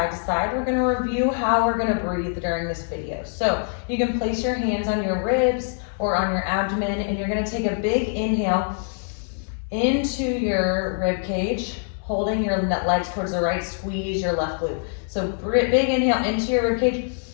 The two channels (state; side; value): silent; right; 63 dB below the other